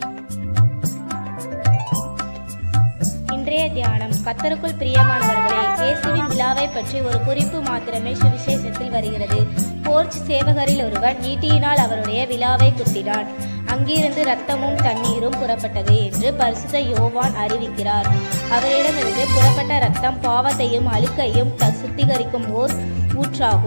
இன்றைய தியானம். கர்த்தருக்குள் பிரியமானவர்களே, இயேசுவின் விழாவை பற்றி ஒரு குறிப்பு மாத்திரமே சுவிசேஷத்தில் வருகிறது. போர்ச் சேவகரில் ஒருவன் ஈட்டியினால் அவருடைய விழாவை குத்தினான். அங்கிருந்து இரத்தமும் தண்ணீரும் புறப்பட்டது என்று பரிசுத்த யோவான் அறிவிக்கிறார். அவரிடமிருந்து புறப்பட்ட இரத்தம் பாவத்தையும் அழுக்கையும் சுத்திகரிக்கும் ஓர்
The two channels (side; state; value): both; inverted; correlation -1.00